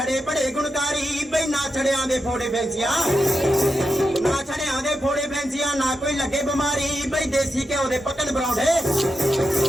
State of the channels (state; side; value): normal; both; correlation 0.88